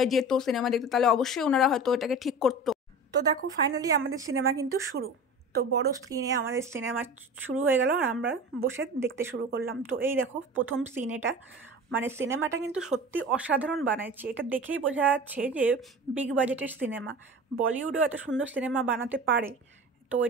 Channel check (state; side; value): normal; both; correlation 0.35